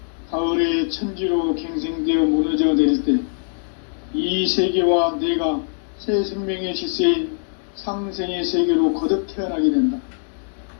가을의 천지로 갱생되어 무너져 내릴 때 이 세계와 내가 새 생명의 질서인 상생의 세계로 거듭 태어나게 된다.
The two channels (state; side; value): silent; right; digital silence